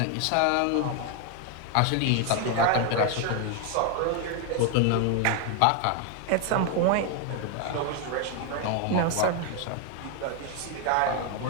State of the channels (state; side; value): different; both; correlation 0.01